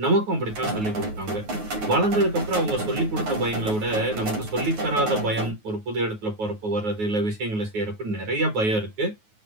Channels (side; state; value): left; late; 9.4 ms